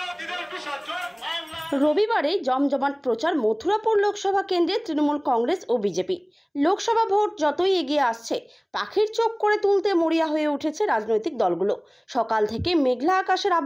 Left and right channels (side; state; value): both; identical; correlation 1.00